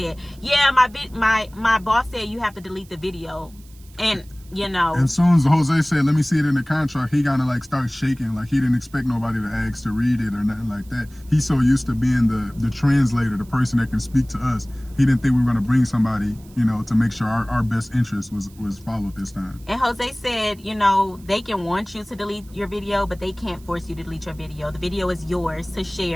yeah, my boss said you have to delete the video. And you know, as soon as Jose said, let me see it in the contract, he kind of like started shaking, like he didn't expect nobody to ask to read it or nothing like that. He's so used to being the translator, the person that can speak to us. He didn't think we were going to bring somebody, you know, to make sure our best interest was followed this time. And Jose said, you know, they can want you to delete your video, but they can't force you to delete your video. The video is yours to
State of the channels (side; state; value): right; noise; hiss, 26 dB below the sound